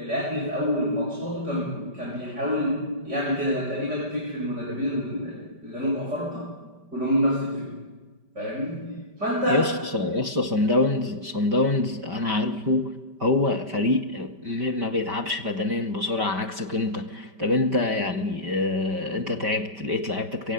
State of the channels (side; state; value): left; late; 5.1 ms